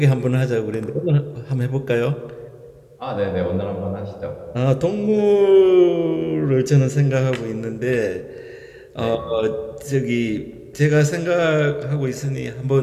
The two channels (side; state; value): both; identical; correlation 1.00